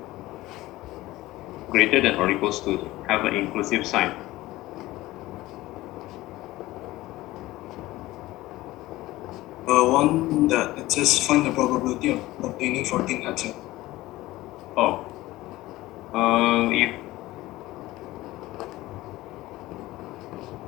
Greater than or equals to, have an inclusive sign. One that it says find the probability of obtaining 14 answer. Oh. If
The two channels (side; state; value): right; quieter; 17.7 dB